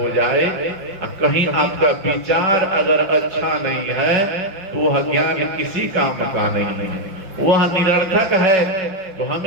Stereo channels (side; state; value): left; late; 5.7 ms